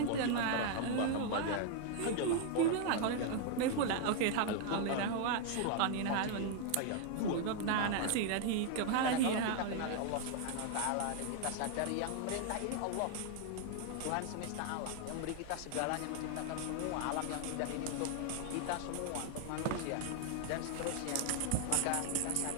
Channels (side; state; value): both; different; correlation 0.00